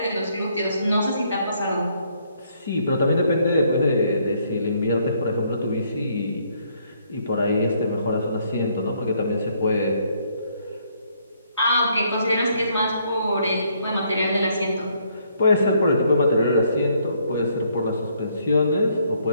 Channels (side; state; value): both; inverted; correlation -0.69